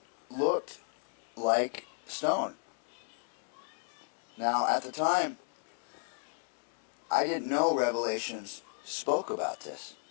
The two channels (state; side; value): silent; right; digital silence